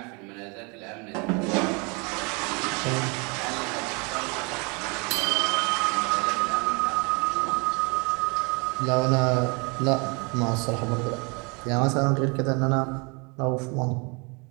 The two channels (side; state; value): left; quieter; 30.4 dB